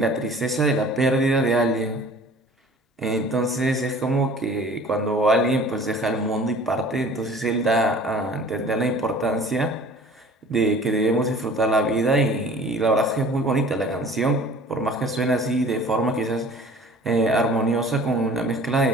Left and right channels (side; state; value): both; normal; correlation 0.47